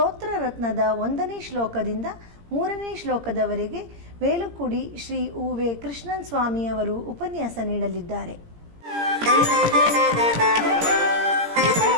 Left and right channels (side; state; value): left; late; 17 ms